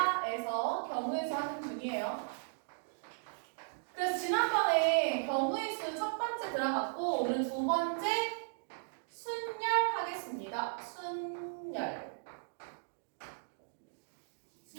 경우의 수 하는 중이에요. 그래서 지난번에 경우의 수 첫 번째 들어갔고 오늘 두 번째 순열 하겠습니다. 순열.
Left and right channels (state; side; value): silent; left; digital silence